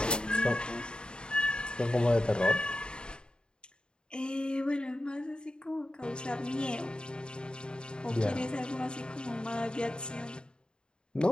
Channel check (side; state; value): right; late; 0.050 ms